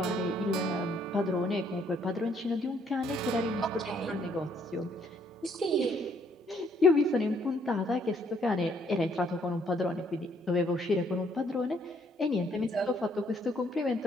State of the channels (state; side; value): normal; both; correlation 0.67